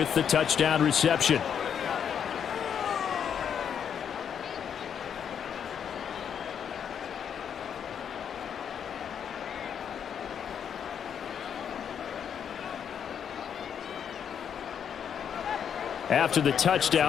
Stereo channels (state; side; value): quieter; right; 8.1 dB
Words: the touchdown reception. After the